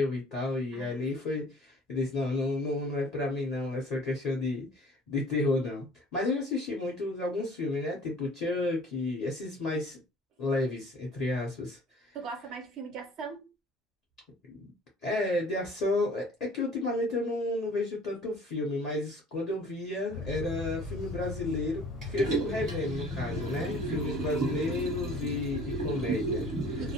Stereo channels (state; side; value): normal; both; correlation 0.50